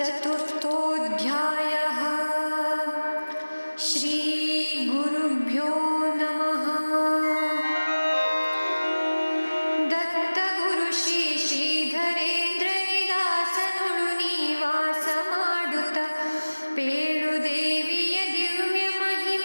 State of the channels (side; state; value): both; inverted; correlation -1.00